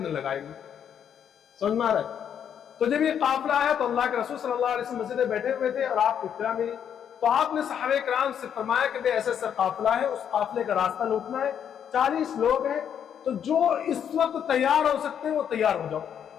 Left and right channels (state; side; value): quieter; right; 8.6 dB